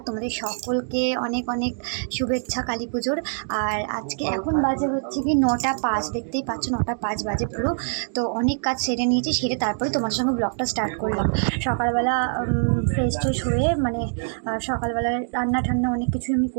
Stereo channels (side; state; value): left; silent; 62 dB below the other